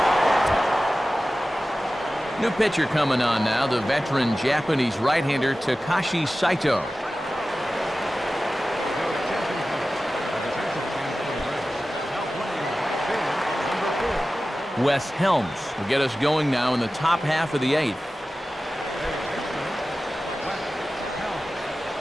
New pitcher coming on now, the veteran Japanese right-hander Takashi Saito. Wes Helms will get us going now in the top half of the 8th.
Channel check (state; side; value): normal; both; correlation 0.95